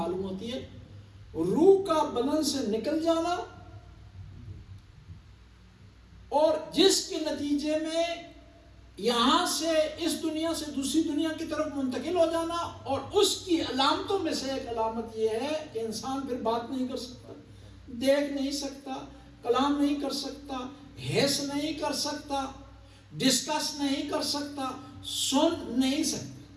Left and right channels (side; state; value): both; identical; correlation 1.00